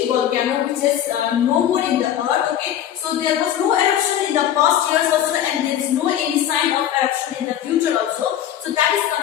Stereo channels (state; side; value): quieter; right; 10.7 dB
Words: volcano, which is no more in the earth, okay. So there was no eruption in the past years also, and there is no any sign of eruption in the future also. So that is